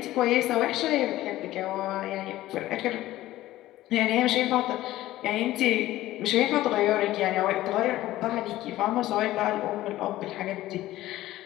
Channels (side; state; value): right; quieter; 15.5 dB